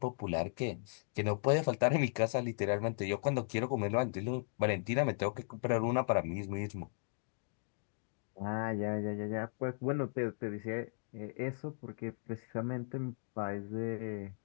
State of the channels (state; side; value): silent; right; digital silence